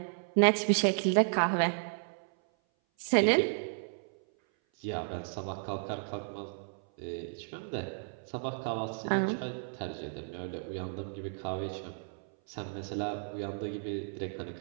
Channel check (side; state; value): left; silent; 56 dB below the other